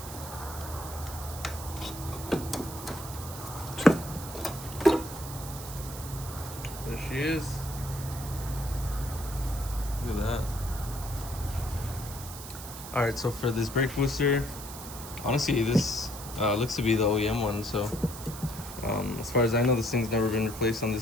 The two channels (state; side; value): noise; right; hiss, 12 dB below the sound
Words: There she is. Look at that. Alright, so for this brake booster, honestly this looks to be the OEM one, so as far as I know, this thing's never been replaced on